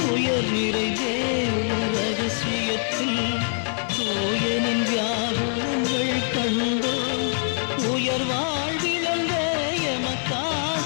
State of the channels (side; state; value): right; silent; 60 dB below the other